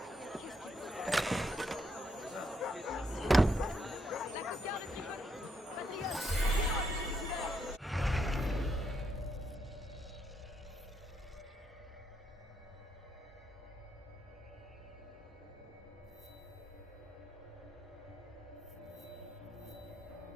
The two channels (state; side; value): normal; both; correlation 0.78